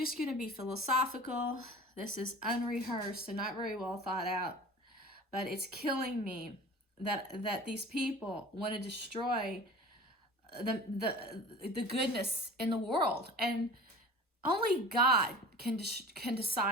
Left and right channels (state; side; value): normal; both; correlation 0.40